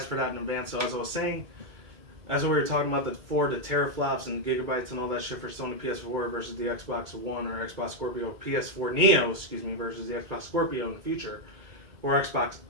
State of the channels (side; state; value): left; late; 2.2 ms